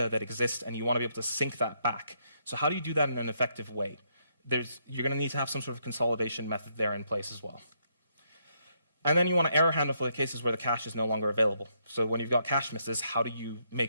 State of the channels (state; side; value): inverted; both; correlation -0.75